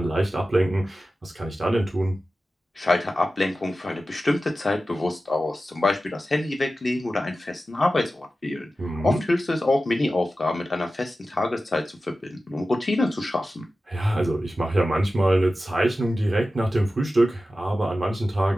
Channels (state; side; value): normal; both; correlation 0.94